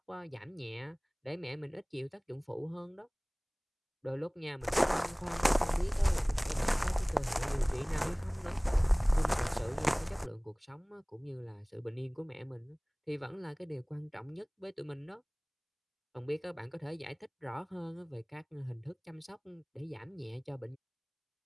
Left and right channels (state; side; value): identical; both; correlation 1.00